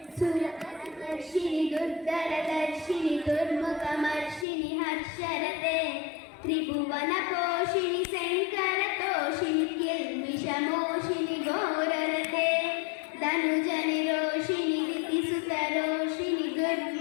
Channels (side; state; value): right; drops out; at 4.5 s